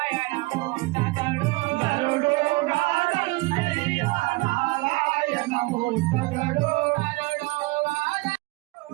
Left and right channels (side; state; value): left; quieter; 23.4 dB